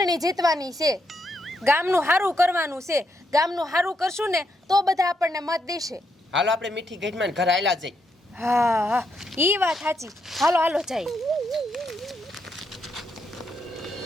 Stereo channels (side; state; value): both; normal; correlation 0.79